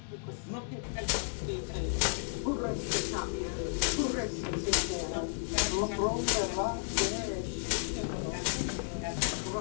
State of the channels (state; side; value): silent; right; digital silence